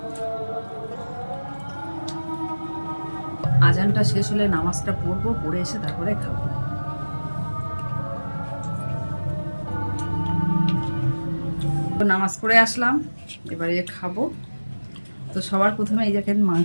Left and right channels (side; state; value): both; inverted; correlation -1.00